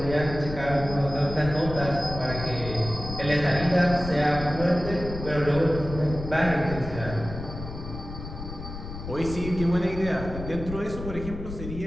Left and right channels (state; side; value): noise; left; rumble, 9 dB below the sound